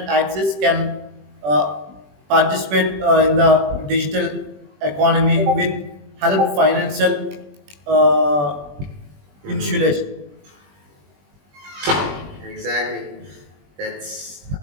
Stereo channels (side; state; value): left; late; 21 ms